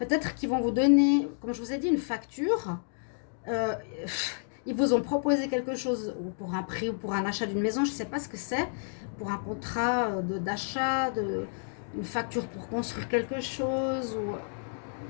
qu'ils vont vous donner, comme je vous ai dit, une facture. Ils vous ont proposé quelque chose pour un prix ou pour un achat d'une maison, je ne sais pas ce que c'est, pour un contrat d'achat, une facture pour construire quelque chose, ou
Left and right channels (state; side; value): silent; right; digital silence